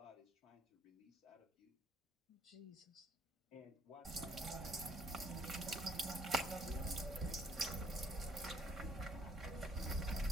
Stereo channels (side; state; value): both; normal; correlation 0.65